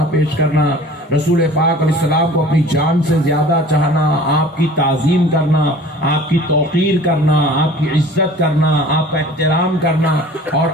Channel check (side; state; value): both; normal; correlation 0.46